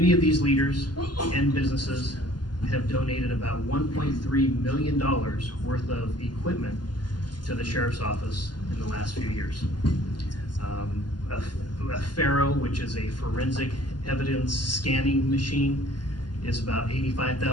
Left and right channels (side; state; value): right; late; 0.71 ms